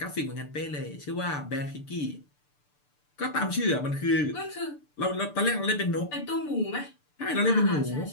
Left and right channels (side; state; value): right; late; 6.8 ms